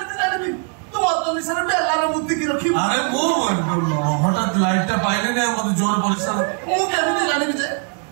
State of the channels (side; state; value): left; quieter; 38.4 dB